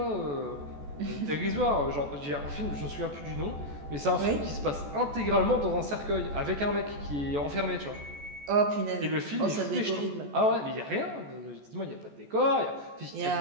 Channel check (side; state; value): left; late; 14 ms